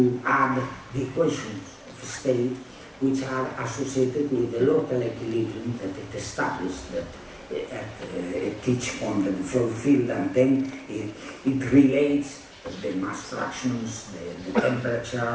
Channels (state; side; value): identical; both; correlation 1.00